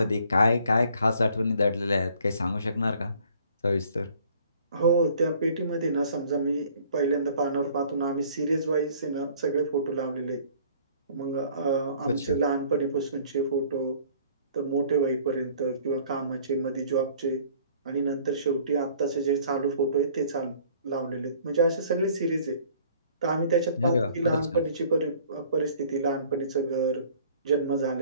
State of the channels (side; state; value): both; inverted; correlation -0.55